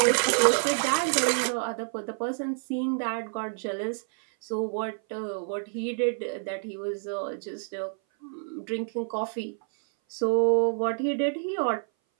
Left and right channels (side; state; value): left; silent; 58 dB below the other